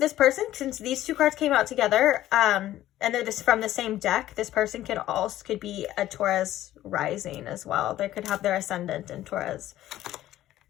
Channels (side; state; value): right; quieter; 13.9 dB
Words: person, since these two cards came out together, and they're just from the same deck, this person could be a Taurus rising as well. They could have their ascendant in Taurus.